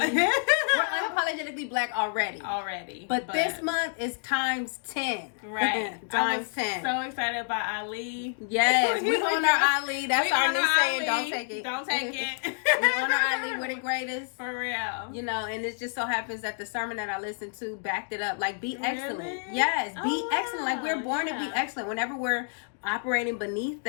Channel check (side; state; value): right; silent; digital silence